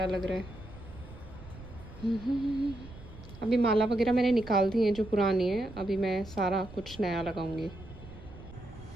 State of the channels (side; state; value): right; noise; rumble, 16 dB below the sound